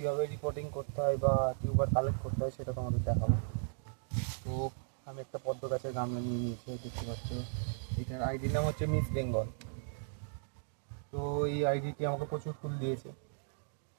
রিপোর্টিং করতে হয় বা টিউবার কালেক্ট করতে হয় সেটা তোমাদের দেখাবো। তো আমি একটা পদ্ম গাছের গামলা নিয়ে নিয়েছি, দেখতে পাচ্ছ। এটার আইডির নাম হচ্ছে মিস বেঙ্গল। তো এই আইডিটি আমাকে প্রচুর ফুল দিয়েছে।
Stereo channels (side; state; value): left; silent; digital silence